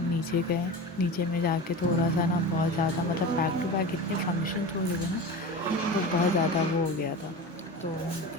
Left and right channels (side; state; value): both; normal; correlation 0.30